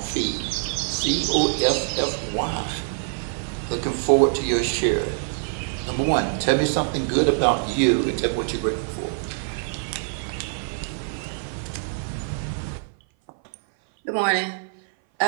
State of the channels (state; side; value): silent; left; 57 dB below the other